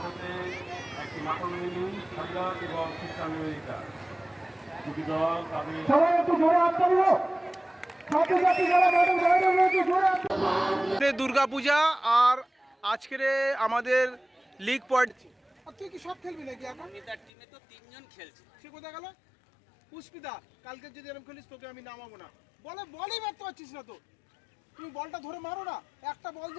একটি নাটমিনী সারিয়া এবং খ্রিস্টান আমেরিকা। দুটি দল তাদের দুর্গাপূজা আর আজকের আমাদের লিগ পয়েন্ট। তুই কি সব খেলবি নাকি এখন? তার টিমে তো তিনজন খেলছে। সে কোথায় গেল? পুষ্পিতা, কালকে যদি এরকম খেলিস তোকে আমি নামাবো না। বলই মারতে পারছিস না তো। তুমি বলটা ধরে মারো না। একটা বল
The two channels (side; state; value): right; drops out; at 17.3 s